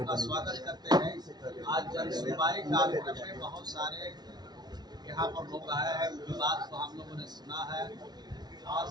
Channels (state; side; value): late; left; 0.19 ms